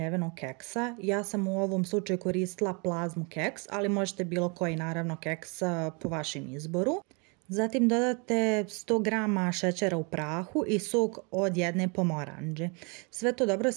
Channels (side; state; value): left; quieter; 32.5 dB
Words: keksa. Ja sam u ovom slučaju koristila plazmu keks, ali možete bilo koji naravno keks po vašem izboru. Zatim dodate 100 g šećera u prahu i sok od jedne pomoranđe. Sve to dobro